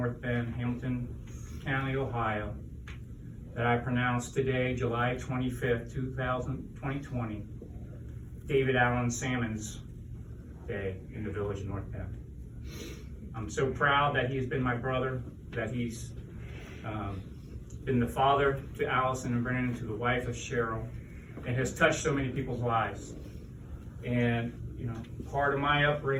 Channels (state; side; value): identical; both; correlation 1.00